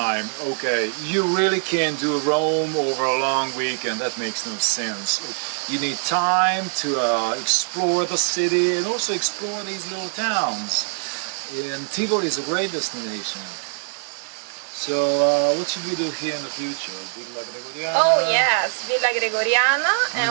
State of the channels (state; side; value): silent; left; digital silence